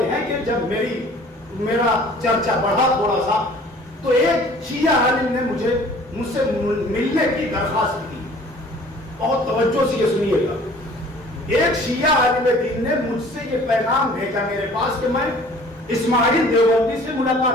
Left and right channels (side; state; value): both; normal; correlation 0.50